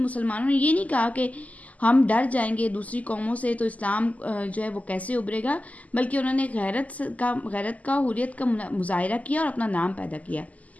نے یہ نہیں کہا کہ ہم ڈر جائیں گے دوسری قوموں سے تو اسلام جو ہے وہ کیسے ابھرے گا، بلکہ انہوں نے غیرت کا حریت کا مظاہرہ کیا اور اپنا نام پیدا کیا۔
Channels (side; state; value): right; late; 0.074 ms